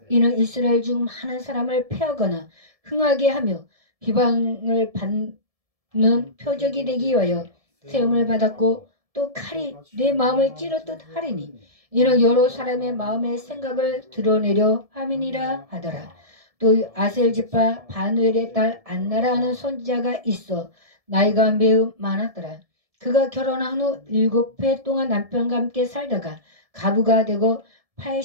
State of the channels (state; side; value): late; left; 1.7 ms